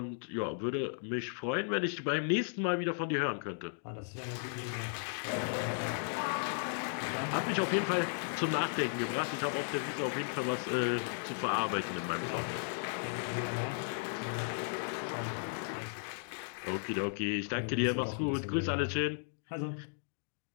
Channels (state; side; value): silent; right; digital silence